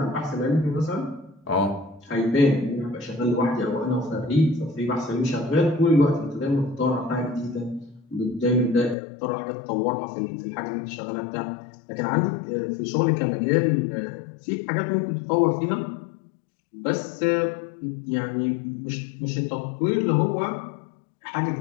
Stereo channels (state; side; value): drops out; right; at 9.0 s